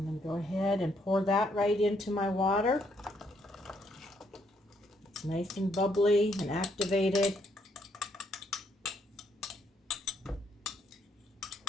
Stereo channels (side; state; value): both; normal; correlation 0.72